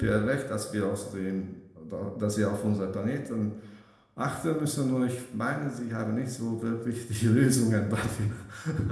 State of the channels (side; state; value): both; identical; correlation 1.00